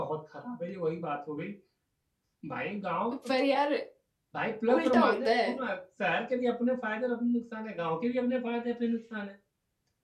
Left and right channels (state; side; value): identical; both; correlation 1.00